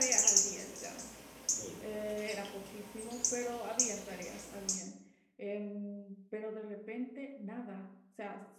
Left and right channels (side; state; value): both; identical; correlation 1.00